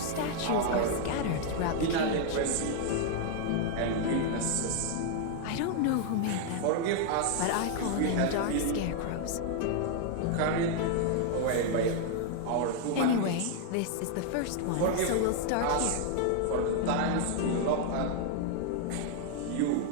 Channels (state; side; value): different; both; correlation 0.00